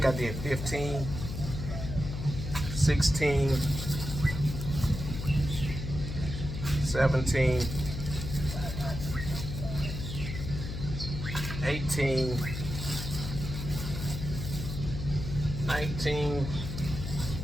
I did 15, 16, 17, 18, 19,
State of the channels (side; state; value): left; noise; hum, 6 dB below the sound